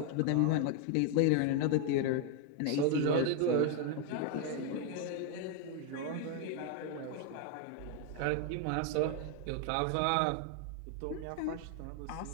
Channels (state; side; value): different; both; correlation 0.01